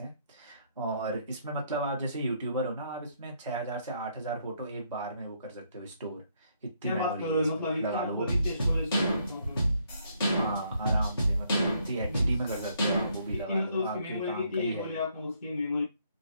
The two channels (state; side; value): inverted; both; correlation -0.71